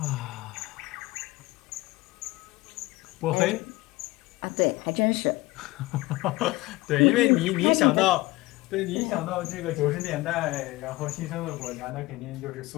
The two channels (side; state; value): right; quieter; 20.4 dB